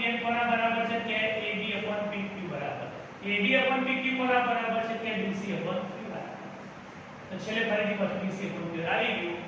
કોના બરાબર છે? કે AD/PQ બરાબર. AD/PQ કોના બરાબર છે? કે BC/QR બરાબર. તો છેલ્લે ફરીથી પાછું BC/QR આવી ગયું.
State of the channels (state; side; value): identical; both; correlation 1.00